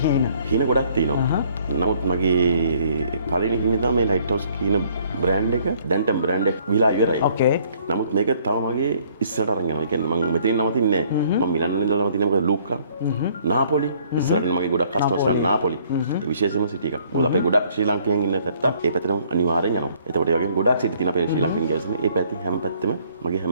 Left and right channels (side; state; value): both; inverted; correlation -0.62